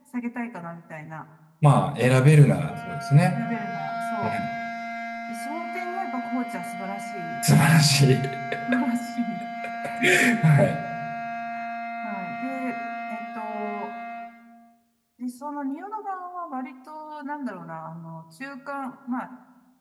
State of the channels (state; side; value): identical; both; correlation 1.00